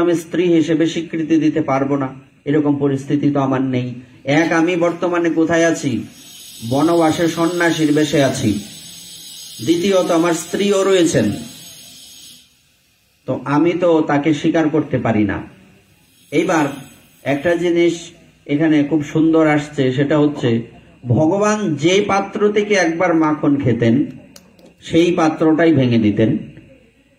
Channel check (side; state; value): both; identical; correlation 1.00